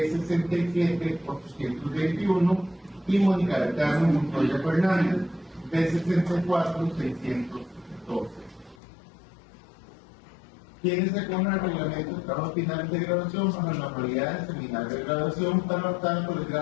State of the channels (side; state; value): right; drops out; at 8.8 s